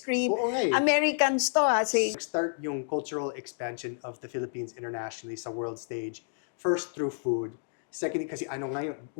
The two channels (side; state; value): right; silent; digital silence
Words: Oo nga eh. Americans to ha, start yung cultural expansion of the Philippines internationally sa world stage. First through food. Second, kasi ano ngayon,